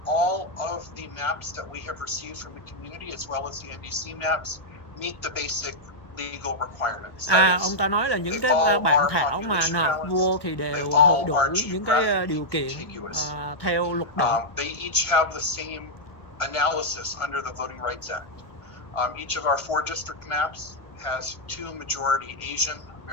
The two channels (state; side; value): late; right; 1.5 ms